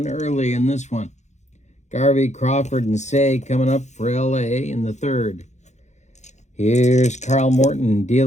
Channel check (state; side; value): late; right; 0.33 ms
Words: early in this one. Garvey, Crawford, and Say coming up for LA in the third. Here's Carl Morton